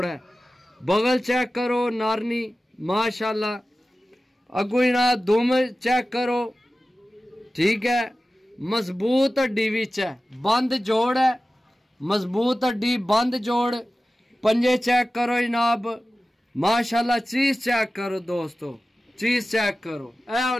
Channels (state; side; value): normal; both; correlation 0.95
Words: है। बगल चेक करो नारनी माशाल्लाह। अगू जनाब दुम चेक करो, ठीक है। मजबूत हड्डी विच है, बंद जोड़ है, मजबूत हड्डी बंद जोड़। पंजे चेक करो जनाब माशाल्लाह। चीज चेक करो दोस्तों, चीज चेक करो। ऐ